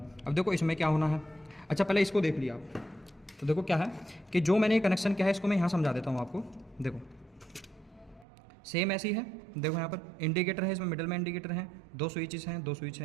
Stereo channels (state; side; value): drops out; left; at 8.2 s